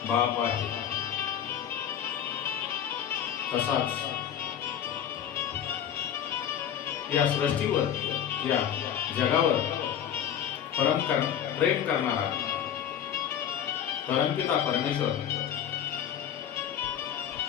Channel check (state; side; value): quieter; right; 9.4 dB